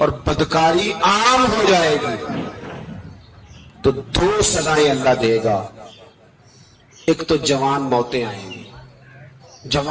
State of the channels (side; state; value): both; identical; correlation 1.00